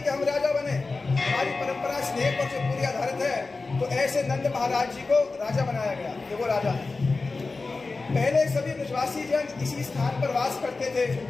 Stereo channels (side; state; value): right; quieter; 3.8 dB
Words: कि हम राजा बने, हमारी परंपरा स्नेह पर जो पूरी आधारित है। तो ऐसे नंद महाराज जी को राजा बनाया गया, ये वो राजा है। पहले सभी ब्रजवासी जन इसी स्थान पर वास करते थे।